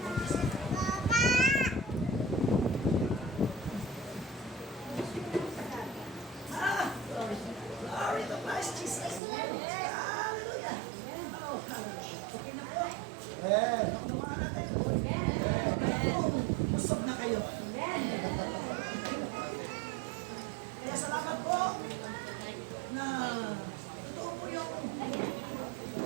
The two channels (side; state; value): left; drops out; at 9.2 s